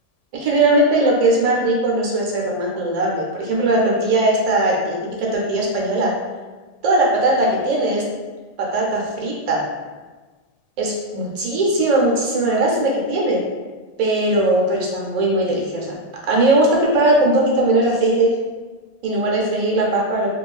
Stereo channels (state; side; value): late; left; 1.7 ms